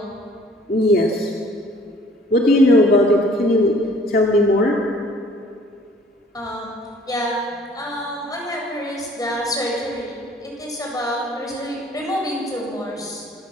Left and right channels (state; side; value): normal; both; correlation 0.55